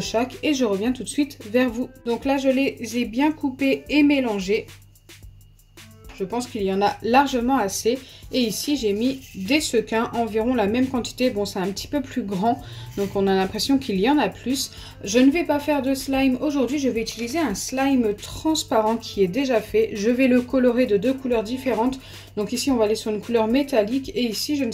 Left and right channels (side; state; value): both; identical; correlation 1.00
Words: et je reviens tout de suite vers vous. Donc là je les ai bien coupés et mélangés. Je pense qu'il y en a largement assez. Et ici, j'ai mis des sequins, environ la même quantité. Bon, c'est un petit peu plus grand, donc on a l'impression qu'il y en a plus. Je ne vais pas faire de slime aujourd'hui. Je vais utiliser un slime transparent qui est déjà fait. Je vais le colorer de 2 couleurs différentes. Donc ici, on va aller sur une couleur métallique. Et ici, je ne